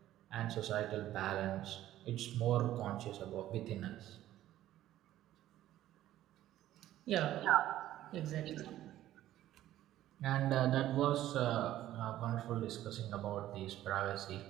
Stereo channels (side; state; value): left; quieter; 13.5 dB